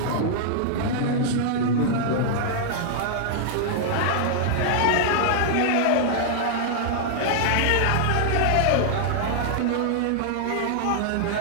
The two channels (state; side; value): different; both; correlation -0.01